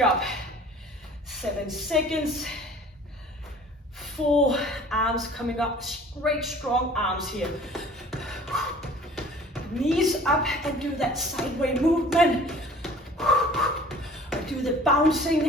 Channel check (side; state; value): both; normal; correlation 0.49